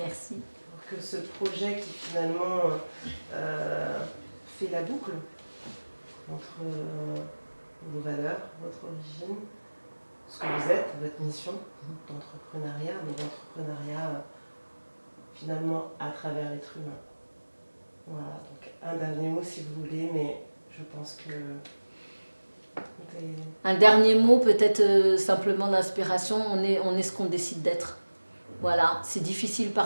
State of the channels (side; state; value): both; inverted; correlation -1.00